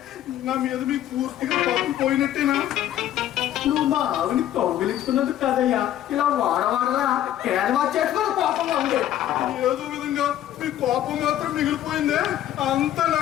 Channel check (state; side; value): quieter; right; 12.1 dB